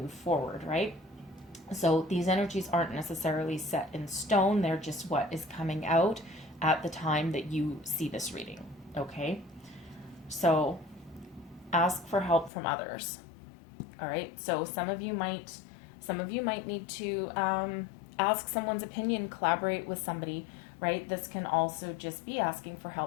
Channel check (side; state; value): right; drops out; at 12.5 s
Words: forward, right? So these energies aren't necessarily set in stone. They're just what is coming out at the time that you see this reading, okay? So ask for help from others. All right. So some of you might need to ask someone's opinion, collaborate with somebody, right? This can also just be asking for